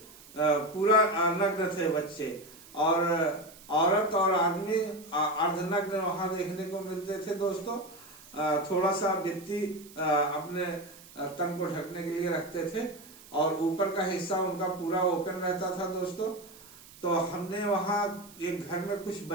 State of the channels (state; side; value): noise; right; hiss, 21 dB below the sound